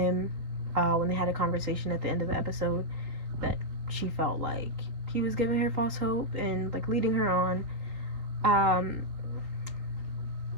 when they had a conversation at the end of the episode that she felt like he was giving her false hope and like leading her on.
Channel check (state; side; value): late; left; 3.8 ms